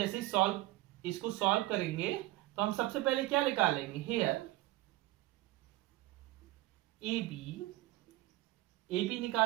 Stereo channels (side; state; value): left; quieter; 17.9 dB